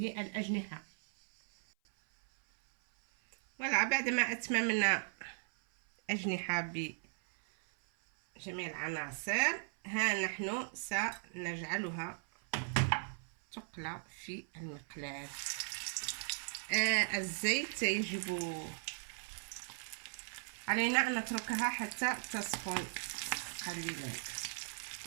الأجنحة. voilà بعد ما أتممنا أجنحة بجميع العناصر ها نحن سنجعلها تقلى في المقلاة. الزيت يجب علينا أن نتركها حتى تسخن قليلا.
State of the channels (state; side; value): silent; left; 53 dB below the other